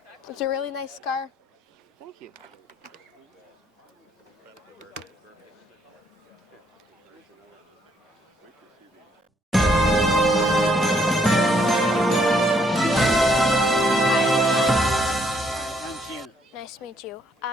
It's a really nice car. Thank you. Nice to meet you.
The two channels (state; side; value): normal; both; correlation 0.69